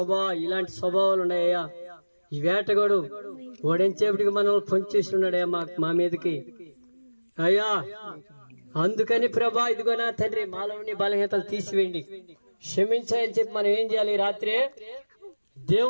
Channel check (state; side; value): inverted; both; correlation -1.00